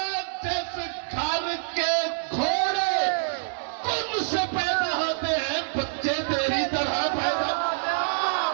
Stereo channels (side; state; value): left; silent; 61 dB below the other